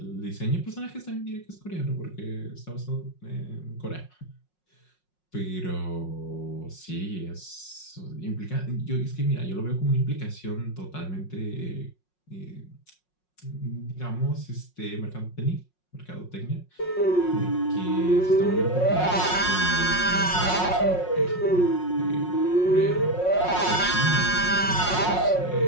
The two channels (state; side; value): late; right; 5.5 ms